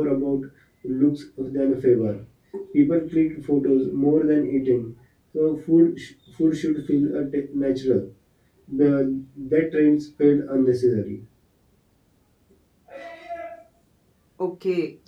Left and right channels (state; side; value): identical; both; correlation 1.00